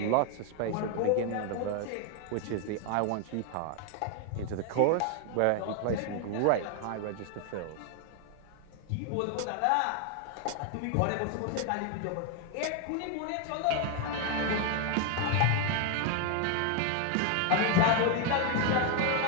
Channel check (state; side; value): different; both; correlation 0.01